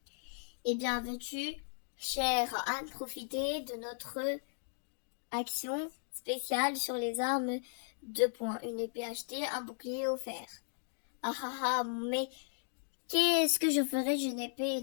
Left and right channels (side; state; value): right; silent; digital silence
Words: Eh bien, veux-tu, chère Anne, profiter de notre action spéciale sur les armes 2 points. Une épée achetée, un bouclier offert. Ah ah ah, mais qu'est-ce que je ferais d'une épée et